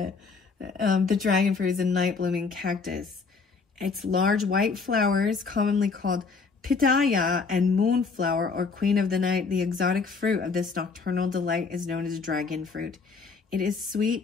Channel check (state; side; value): quieter; right; 4.7 dB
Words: The dragon fruit is a night blooming cactus. Its large white flowers, commonly called pitaya and moonflower or queen of the night, the exotic fruit of this nocturnal delight is known as dragon fruit. It is